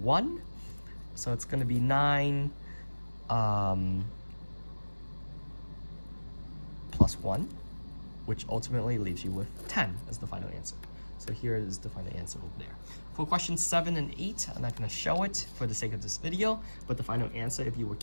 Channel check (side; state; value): both; inverted; correlation -1.00